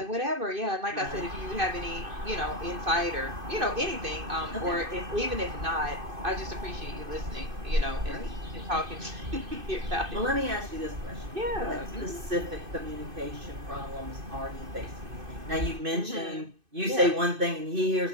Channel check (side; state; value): left; late; 2.5 ms